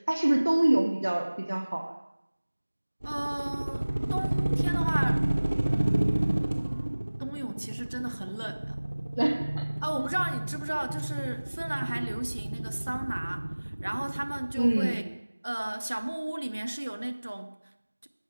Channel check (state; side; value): inverted; both; correlation -1.00